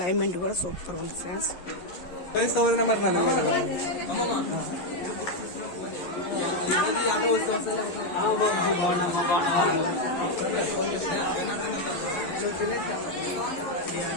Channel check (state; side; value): late; right; 11 ms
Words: కూడా సూపర్ ఉంది ఫ్రెండ్స్. ఫ్రెండ్స్